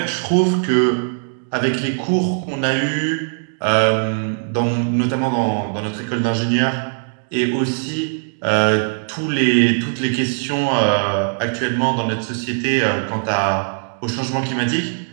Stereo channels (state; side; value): silent; left; digital silence